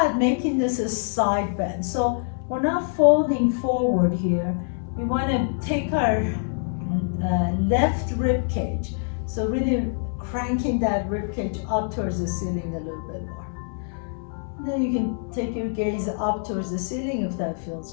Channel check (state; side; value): silent; right; digital silence